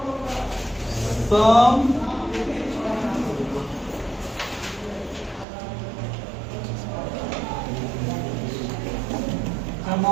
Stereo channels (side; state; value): left; drops out; at 5.5 s